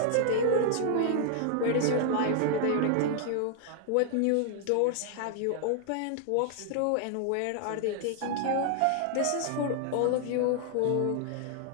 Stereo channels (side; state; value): both; different; correlation 0.00